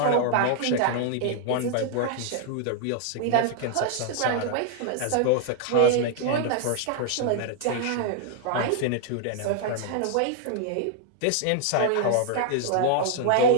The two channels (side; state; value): both; different; correlation 0.00